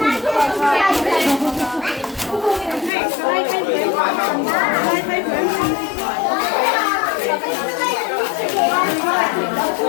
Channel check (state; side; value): drops out; right; at 2.9 s